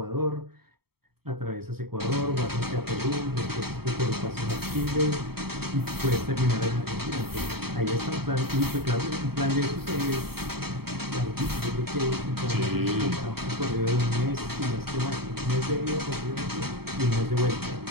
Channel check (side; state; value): left; late; 0.95 ms